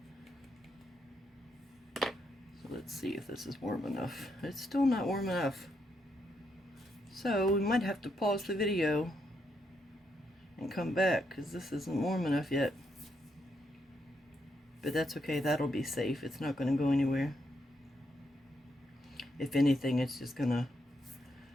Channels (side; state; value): both; normal; correlation 0.79